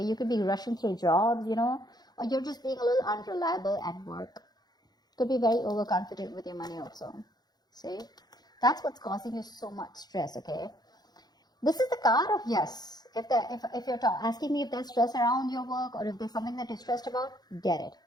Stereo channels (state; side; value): late; right; 0.19 ms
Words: You could be rushing through jobs, or you're just being a little unreliable at work. Could be very overconfident with your money also. See? That's what's causing you so much stress, okay? This is the card of yes. If you're asking me if there's stress around your work or if there's something that you're stressed about, get it,